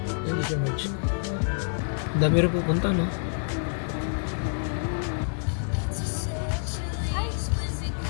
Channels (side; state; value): right; silent; 60 dB below the other